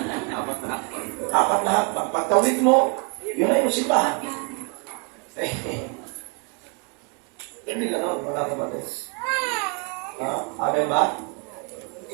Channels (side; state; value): left; quieter; 34.6 dB